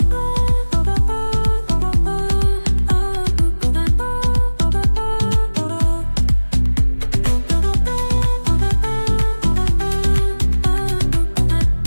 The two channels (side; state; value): both; inverted; correlation -1.00